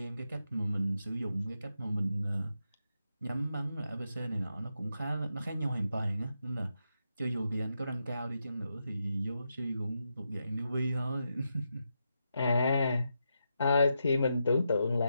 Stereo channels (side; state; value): both; inverted; correlation -0.85